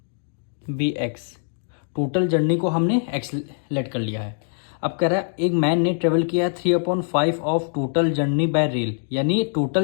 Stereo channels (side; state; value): right; silent; digital silence